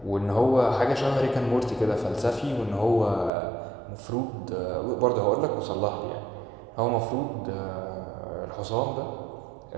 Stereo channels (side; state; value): left; drops out; at 3.3 s